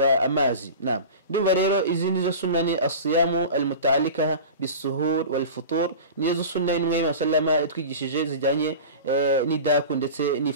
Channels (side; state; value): both; inverted; correlation -0.34